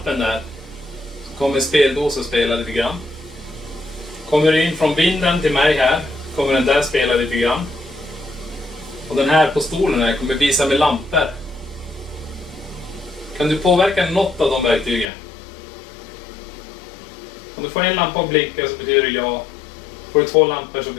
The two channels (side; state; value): right; drops out; at 15.1 s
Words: där så kommer speldosen spela lite grann. Kommer du in från vinden till mig här kommer den där spela lite grann. Och den här på stolen här kommer visa med lampor. Kan du påverka något av de verktygen? Om du får en lampa att blinka så betyder det ja. Får du 2 lampor så